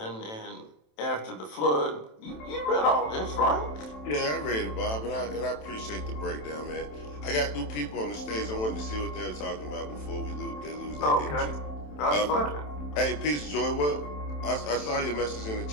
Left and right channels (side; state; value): right; late; 27 ms